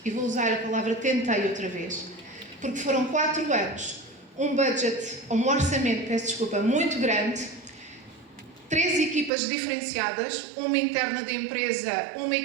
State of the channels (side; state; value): left; drops out; at 9.3 s